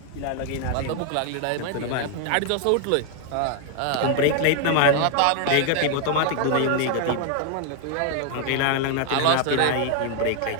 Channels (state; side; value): different; both; correlation 0.00